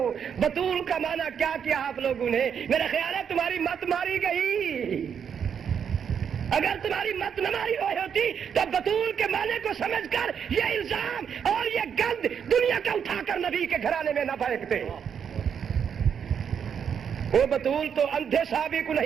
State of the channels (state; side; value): quieter; left; 7.6 dB